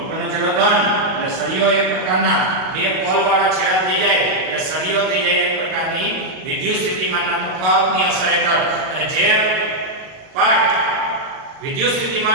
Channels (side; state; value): left; late; 38 ms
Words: ઉપરનો છેડો ધન. એટલે સળિયો એક પ્રકારના બે પોલ વાળા છેડા થઈ જાય એટલે સળિયો થઈ જાય એક પ્રકારની વિદ્યુત સ્થિતિમાનના તફાવતની અસર હેઠળ. અને જે પાર્ટ વિદ્યુત